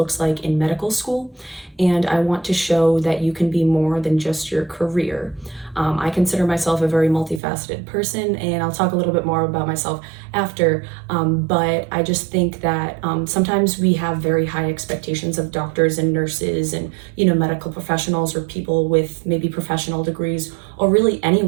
like in medical school. And I want to show that you can be more than just your career. I consider myself a very multifaceted person, and I'll talk a little bit more about myself after, but I just think that sometimes we have very high expectations of doctors and nurses and, medical professionals or people with maybe professional degrees, or really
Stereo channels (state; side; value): drops out; left; at 7.4 s